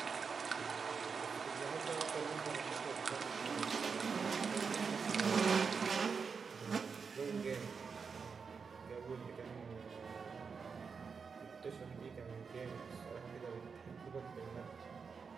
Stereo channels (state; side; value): quieter; left; 5.6 dB